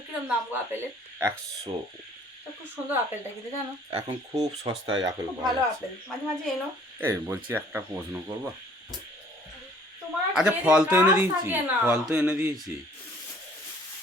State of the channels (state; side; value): normal; both; correlation 0.56